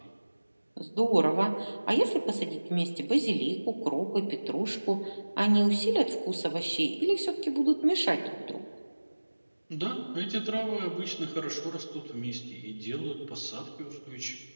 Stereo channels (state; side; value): inverted; both; correlation -1.00